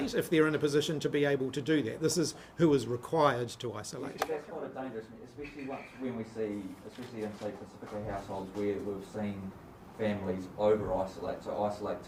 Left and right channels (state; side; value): identical; both; correlation 1.00